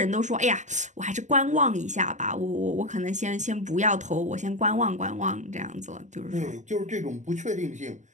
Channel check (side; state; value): left; late; 0.34 ms